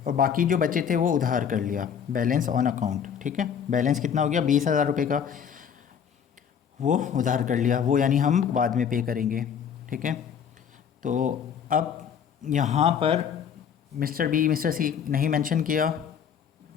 और बाकी जो बचे थे वो उधार कर लिया, बैलेंस ऑन अकाउंट। ठीक है, बैलेंस कितना हो गया, 20,000 रुपये का, वो उधार कर लिया, वो यानी हम बाद में पे करेंगे। ठीक है, तो अब यहाँ पर मिस्टर बी मिस्टर सी नहीं मेंशन किया,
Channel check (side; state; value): right; quieter; 7.8 dB